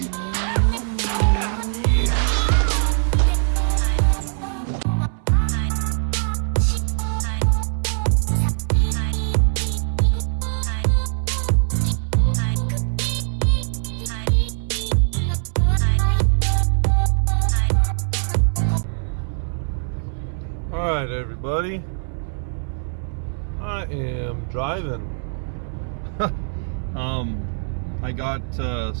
Alright everybody, I am driving. I got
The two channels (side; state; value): left; silent; 60 dB below the other